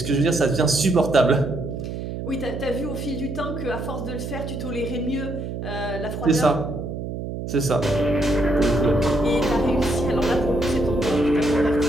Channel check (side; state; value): right; noise; hum, 6 dB below the sound